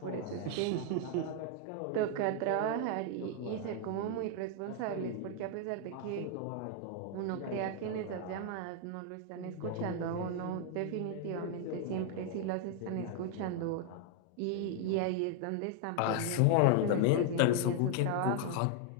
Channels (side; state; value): both; different; correlation 0.00